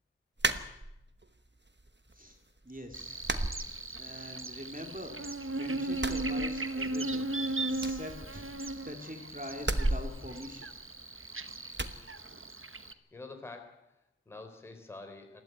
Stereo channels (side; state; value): both; normal; correlation 0.46